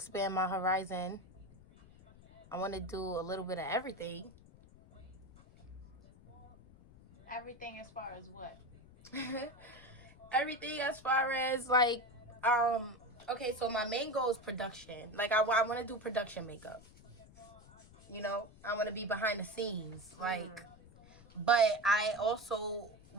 my horizon. I want to do a little bit of everything. Everything as far as what? Everything as far as, like, okay, so my main goal is production. Like, I want to do production makeup. I want to be behind the scenes. Like, but I also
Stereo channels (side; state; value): left; noise; rumble, 22 dB below the sound